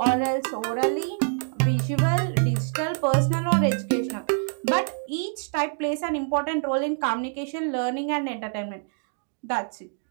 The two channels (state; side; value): silent; left; 61 dB below the other